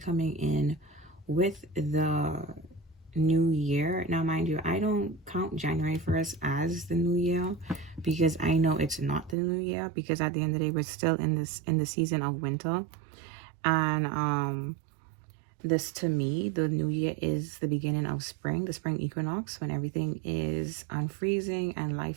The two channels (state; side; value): drops out; left; at 9.3 s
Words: in with the new year. Now, mind you, I don't count January 1st as the new year, because I know it's not the new year, because at the end of the day, we're still in the season of winter. And this, to me, the new year is the beginning of spring, the spring equinox, when everything is unfreezing and